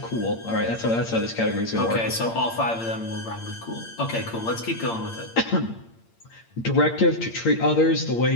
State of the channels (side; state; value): right; late; 8.8 ms